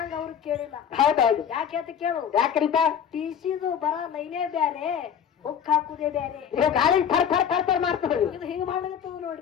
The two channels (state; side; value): quieter; right; 8.2 dB